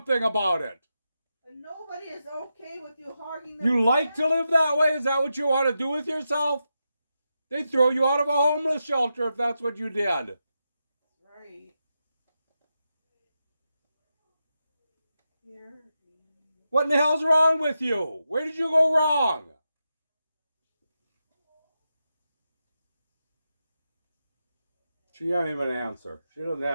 about it? And nobody is okay with you hogging. You like to live that way? Is that what you want to do with yourself? They'd throw you out of a homeless shelter if that's what you did. Right. Here. What in the hell's wrong with you? Where did you go wrong? She can't even answer. She doesn't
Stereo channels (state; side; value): inverted; both; correlation -0.88